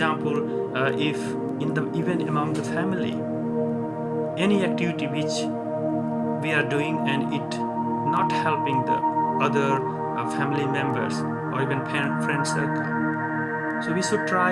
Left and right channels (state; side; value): identical; both; correlation 1.00